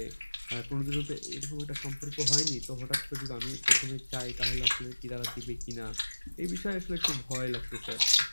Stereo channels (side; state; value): both; inverted; correlation -1.00